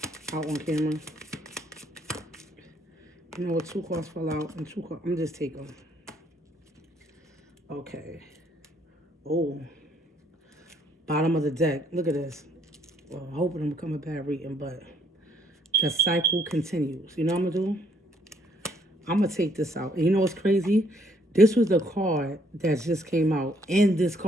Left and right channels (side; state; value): both; normal; correlation 0.67